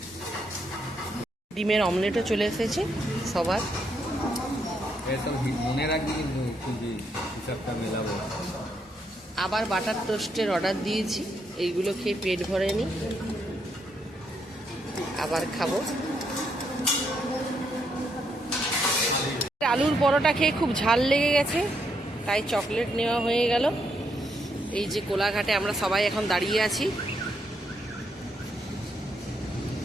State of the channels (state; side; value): normal; both; correlation 0.77